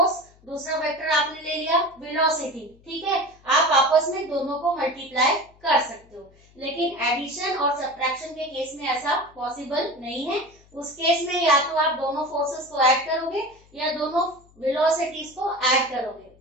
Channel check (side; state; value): left; noise; hum, 28 dB below the sound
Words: दूसरा वेक्टर आपने ले लिया वेलोसिटी, ठीक है, आप आपस में दोनों को मल्टीप्लाई कर सकते हो। लेकिन एडिशन और सब्ट्रैक्शन के केस में ऐसा पॉसिबल नहीं है। उस केस में या तो आप दोनों फोर्सेस को ऐड करोगे या दोनों वेलोसिटीज को ऐड करोगे।